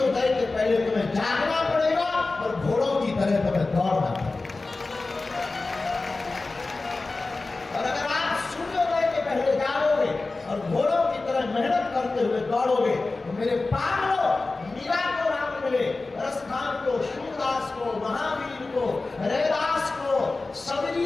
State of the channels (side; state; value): right; quieter; 3.5 dB